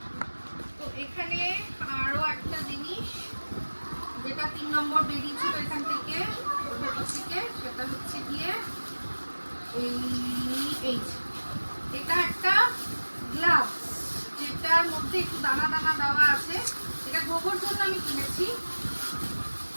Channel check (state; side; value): inverted; both; correlation -1.00